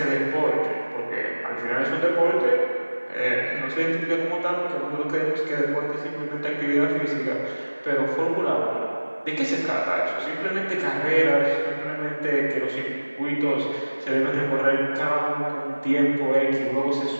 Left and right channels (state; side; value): inverted; both; correlation -1.00